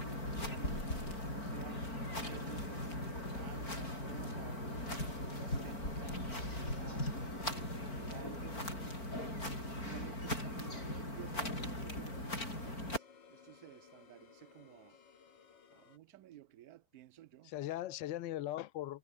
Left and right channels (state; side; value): late; right; 4.5 ms